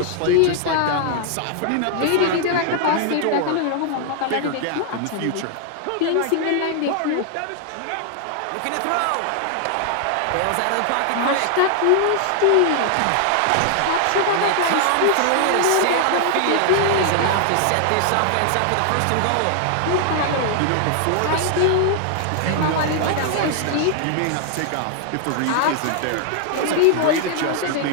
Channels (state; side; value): different; both; correlation 0.00